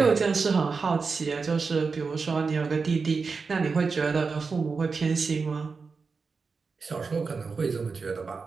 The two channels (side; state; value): left; quieter; 4.8 dB